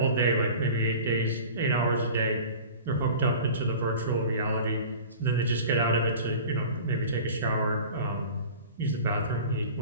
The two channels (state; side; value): inverted; both; correlation -0.39